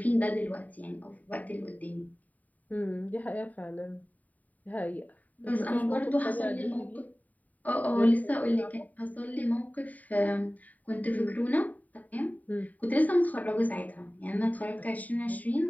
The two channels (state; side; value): late; right; 0.074 ms